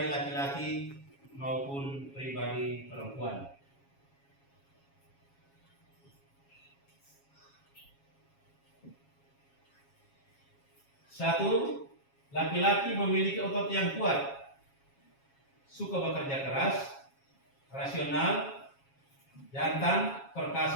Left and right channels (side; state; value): right; late; 7.3 ms